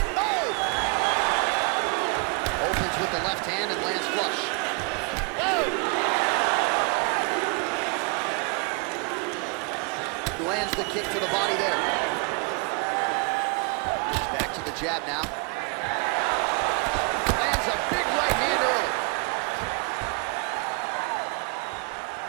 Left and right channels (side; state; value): left; quieter; 33.5 dB